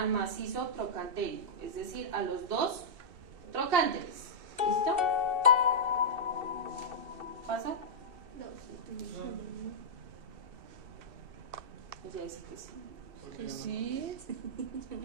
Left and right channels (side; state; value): left; late; 2.7 ms